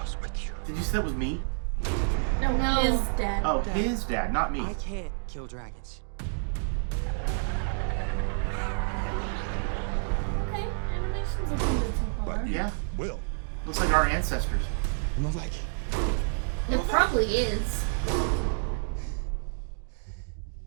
with you. Did you say that was me? No, His dad. Oh, his dad, not me. I can't kill dragons. Okay, animation's looking good so far. But you Yeah. will. Looks like our ancestors. Not like It probably is.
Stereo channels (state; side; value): silent; left; digital silence